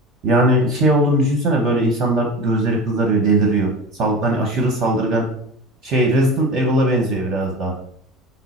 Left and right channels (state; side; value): normal; both; correlation 0.32